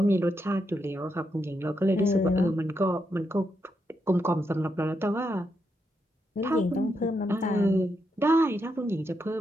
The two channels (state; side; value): normal; both; correlation 0.82